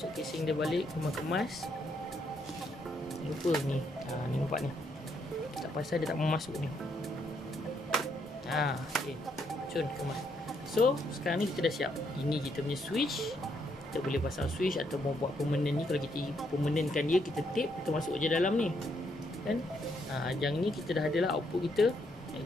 casing dia balik, kemas-kemas. Lupa ni, ni nampak ni, tak pasal dia tak mau masuk ni. Okay, cun kemas. So sekarang ni kita dah siap. Ini kita punya switch. Kita boleh pasang switch atau mau buat permanent ni. Kalau kita permanentkan dia, kita tape, kita masuk je dalam ni kan. Yang ni kita dah adalah output kita,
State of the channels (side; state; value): both; normal; correlation 0.74